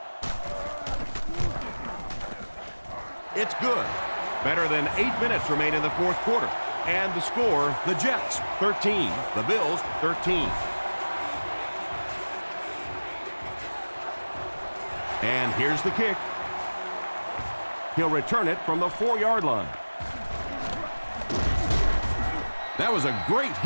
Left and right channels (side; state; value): both; inverted; correlation -1.00